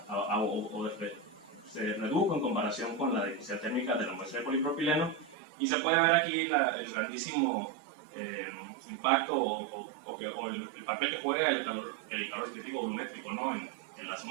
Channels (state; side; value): drops out; left; at 5.4 s